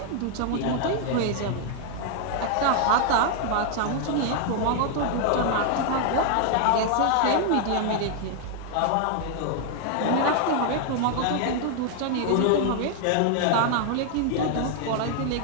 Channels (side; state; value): both; different; correlation 0.00